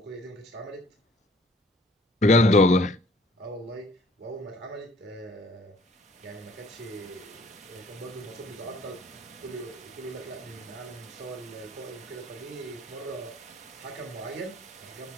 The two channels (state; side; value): normal; both; correlation 0.57